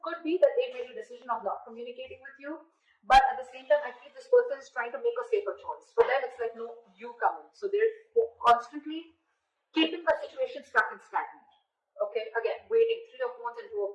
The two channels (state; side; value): identical; both; correlation 1.00